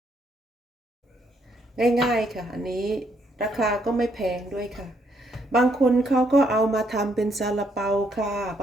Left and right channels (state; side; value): normal; both; correlation 0.72